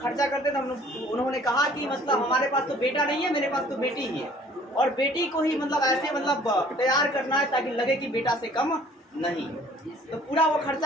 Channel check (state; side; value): normal; both; correlation 0.54